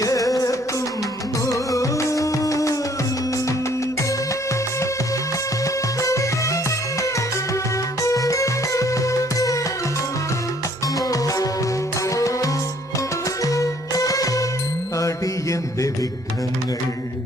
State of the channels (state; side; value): normal; both; correlation 0.61